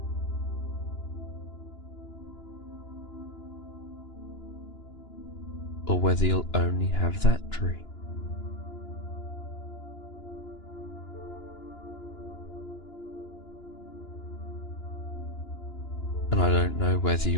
or whether you'll only have that dream. And I don't know whether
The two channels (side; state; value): right; late; 2.9 ms